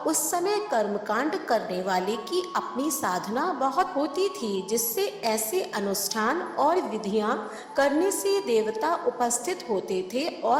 उस समय कर्मकांड करने वाले की अपनी साधना बहुत होती थी, जिससे ऐसे अनुष्ठान और विधियां करने से देवता उपस्थित होते थे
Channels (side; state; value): both; identical; correlation 1.00